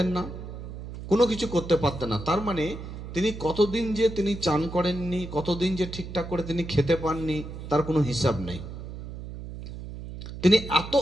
না, কোনো কিছু করতে পারতেন না। তার মানে তিনি কতদিন যে তিনি চান করেননি, কতদিন যে ঠিকঠাক করে তিনি খেতে পাননি, তার কোনো হিসাব নেই। তিনি এত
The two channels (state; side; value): noise; right; hum, 10 dB below the sound